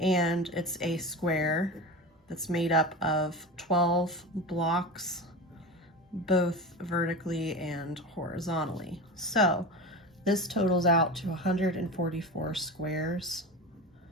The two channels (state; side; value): normal; both; correlation 0.27